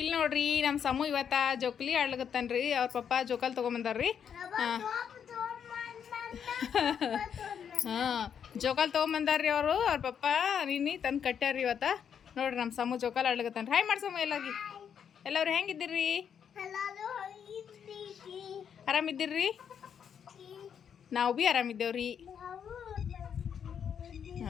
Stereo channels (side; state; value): right; quieter; 7.9 dB